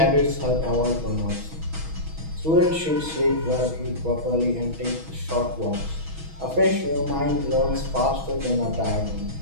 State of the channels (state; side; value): late; left; 6.2 ms